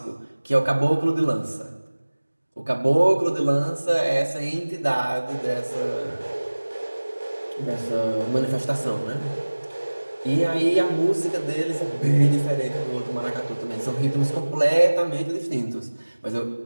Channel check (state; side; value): inverted; both; correlation -1.00